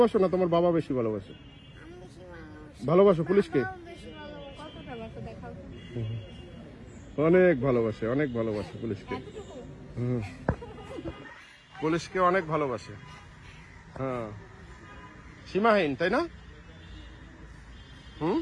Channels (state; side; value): identical; both; correlation 1.00